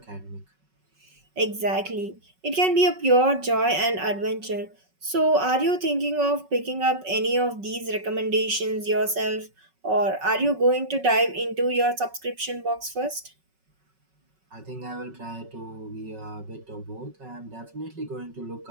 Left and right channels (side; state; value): left; late; 5.4 ms